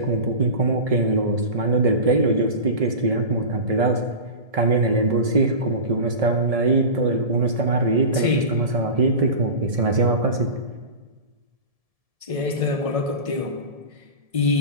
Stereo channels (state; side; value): late; left; 1.7 ms